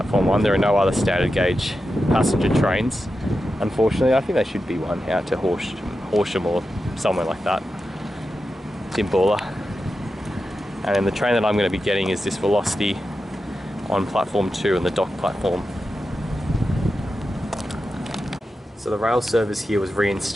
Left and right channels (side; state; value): both; normal; correlation 0.90